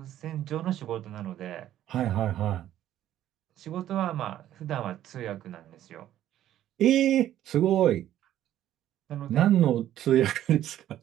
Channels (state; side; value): quieter; left; 12.3 dB